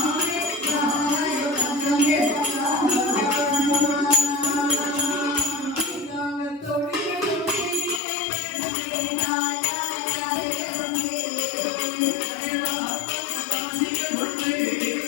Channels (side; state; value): right; drops out; at 8.0 s